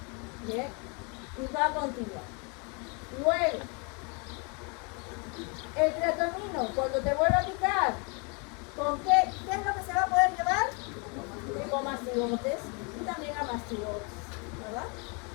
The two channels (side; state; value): right; quieter; 33.5 dB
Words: Bien, y va a continuar. Luego, el triatomino, cuando te vuelva a picar, ¿con qué es lo que se va a poder llevar? Tripomastigotes y también a mastigotes, ¿verdad?